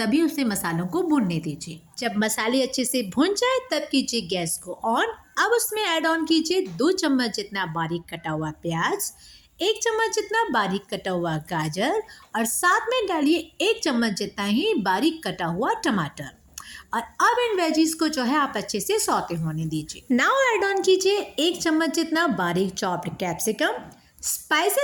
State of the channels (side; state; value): both; identical; correlation 1.00